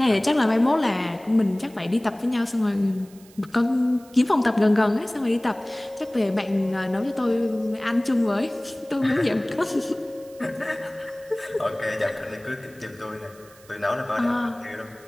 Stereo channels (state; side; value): noise; right; hiss, 25 dB below the sound